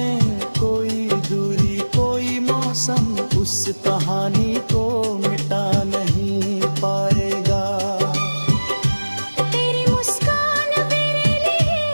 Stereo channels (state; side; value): inverted; both; correlation -1.00